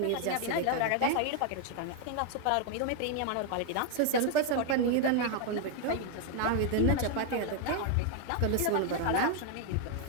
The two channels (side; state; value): both; different; correlation 0.00